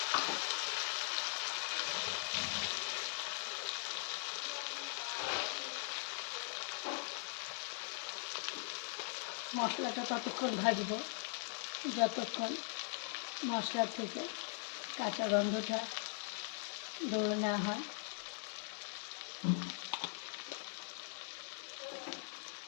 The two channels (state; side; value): silent; right; 50 dB below the other